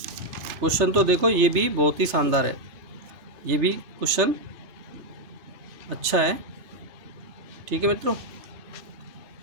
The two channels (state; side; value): late; left; 3.3 ms